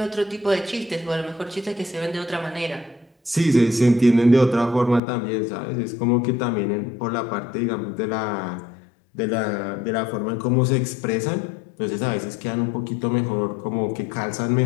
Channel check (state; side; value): drops out; right; at 5.0 s